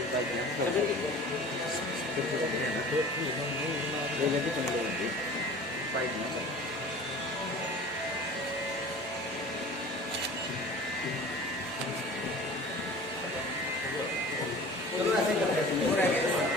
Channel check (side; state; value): both; normal; correlation 0.41